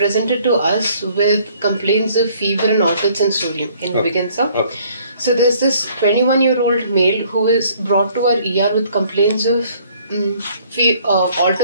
to us with complaints of fever and altered sensorium. Can we begin, sir? Okay. So there's this 21-year-old male who is brought to our ER with complaints of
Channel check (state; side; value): inverted; both; correlation -0.60